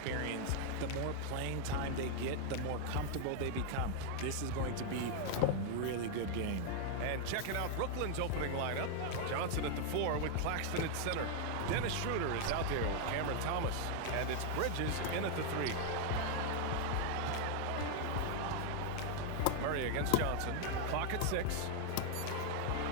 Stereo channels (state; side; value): different; both; correlation 0.00